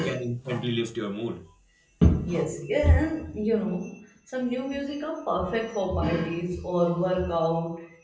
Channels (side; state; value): both; identical; correlation 1.00